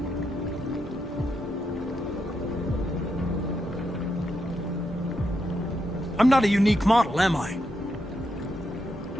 I'm not a unique model, am I?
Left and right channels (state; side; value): normal; both; correlation 0.82